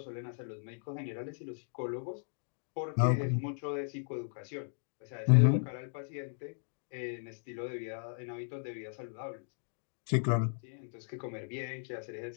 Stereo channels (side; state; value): right; silent; digital silence